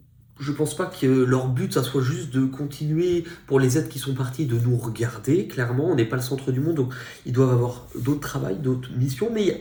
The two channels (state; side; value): identical; both; correlation 1.00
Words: je pense pas que leur but, ça soit juste de continuer pour les êtres qui sont partis, de nous regarder. Clairement, on n'est pas le centre du monde, donc ils doivent avoir d'autres travails, d'autres missions.